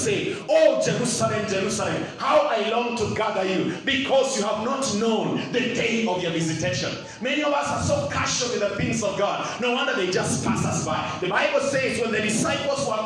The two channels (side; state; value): both; identical; correlation 1.00